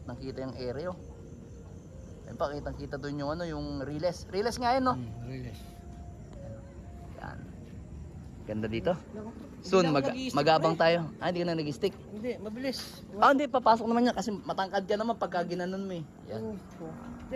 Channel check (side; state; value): both; identical; correlation 1.00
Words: yung area, oh. Ayan pa, kitang-kita dun yung ano, yung Riles. Riles nga yun, no? Riles. Yan. Ganda dito. Soon, mag-aabang tayo. Ah, hindi ka na nag-stick. Hindi, mabilis. Ah, hindi, papasok naman yan kasi matangkad ka naman pagka ginanon mo eh. Yan. Hindi,